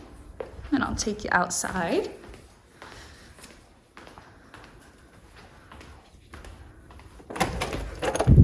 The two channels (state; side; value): identical; both; correlation 1.00